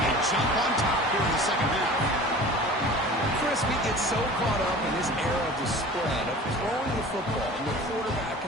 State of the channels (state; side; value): normal; both; correlation 0.41